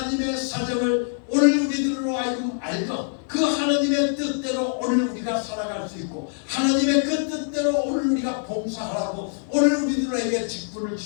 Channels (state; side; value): silent; right; 62 dB below the other